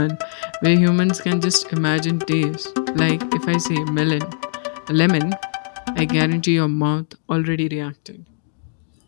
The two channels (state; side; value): silent; right; digital silence